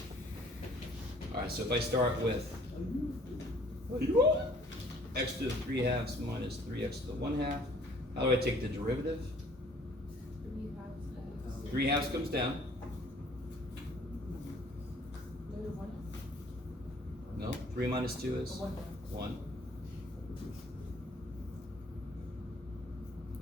All right, so if I start with x to the 3/2 minus 3x to the 1/2, how do I take the derivative? 3/2 comes down. No, 3 minus 2 is 1.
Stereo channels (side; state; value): both; normal; correlation 0.56